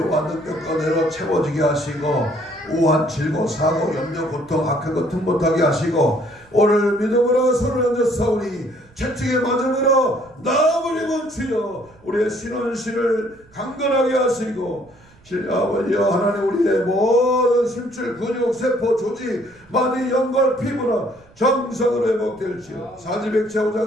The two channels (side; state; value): right; noise; rumble, 28 dB below the sound